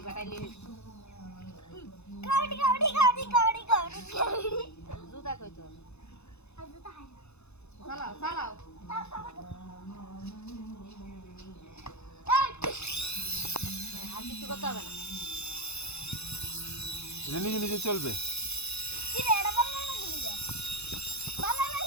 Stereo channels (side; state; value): right; late; 0.80 ms